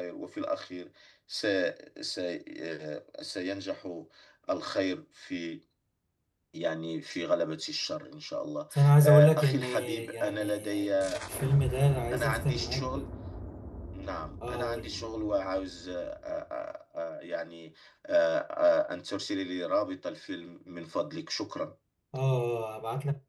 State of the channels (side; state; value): both; identical; correlation 1.00